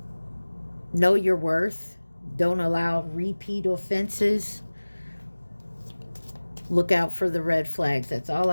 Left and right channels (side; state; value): both; inverted; correlation -1.00